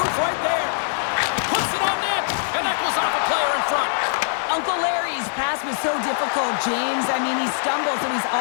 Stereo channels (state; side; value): silent; right; 64 dB below the other